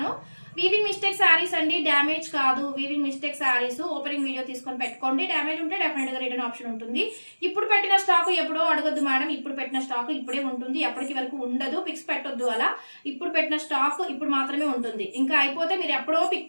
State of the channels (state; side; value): inverted; both; correlation -1.00